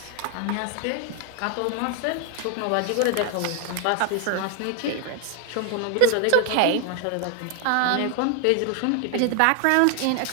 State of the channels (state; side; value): different; both; correlation 0.00